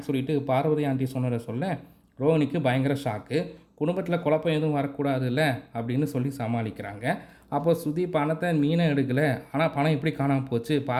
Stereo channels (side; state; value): both; identical; correlation 1.00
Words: சொல்லிவிட்டு பார்வதி ஆண்டி சொன்னதை சொல்ல, ரோகிணிக்கு பயங்கர ஷாக்கு. குடும்பத்தில் குழப்பம் எதுவும் வரக்கூடாதுல்ல அப்படின்னு சொல்லி சமாளிக்கிறாங்க. அப்போ சுதி பணத்தை மீனை எடுக்கலை, ஆனால் பணம் எப்படி காணாமல் போச்சு,